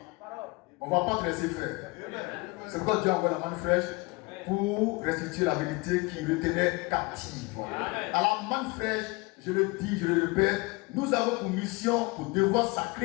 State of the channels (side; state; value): right; quieter; 25.4 dB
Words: On ne va pas te laisser faire. C'est pourquoi Dieu envoie la manne fraîche pour restituer la vérité qui le tenait captive. À la manne fraîche, je le dis, je le répète, nous avons pour mission, pour devoir